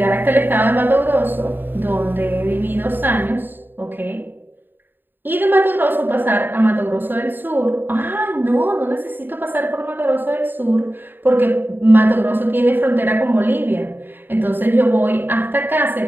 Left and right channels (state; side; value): late; left; 0.094 ms